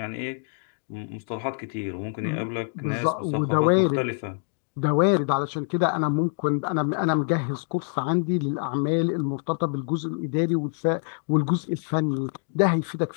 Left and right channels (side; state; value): right; silent; 61 dB below the other